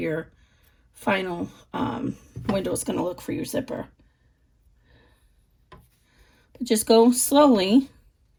final window is going to look for your zipper. But just go slowly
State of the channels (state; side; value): identical; both; correlation 1.00